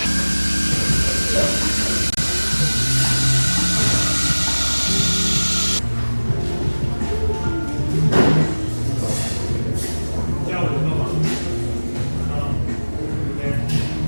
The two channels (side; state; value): both; inverted; correlation -1.00